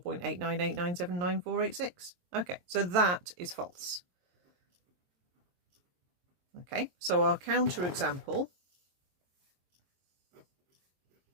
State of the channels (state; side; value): late; left; 23 ms